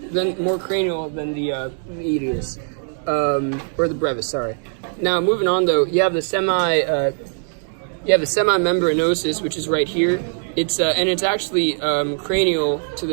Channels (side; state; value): left; silent; 61 dB below the other